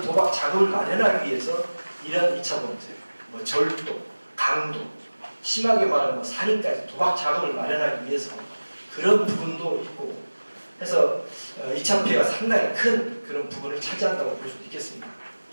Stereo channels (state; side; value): inverted; both; correlation -1.00